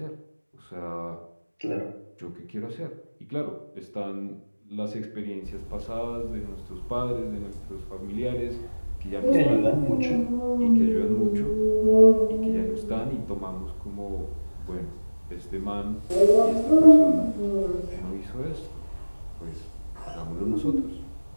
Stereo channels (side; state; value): both; inverted; correlation -1.00